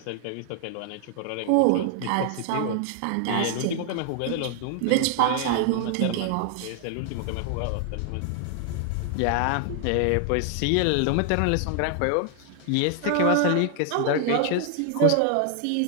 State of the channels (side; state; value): both; different; correlation 0.00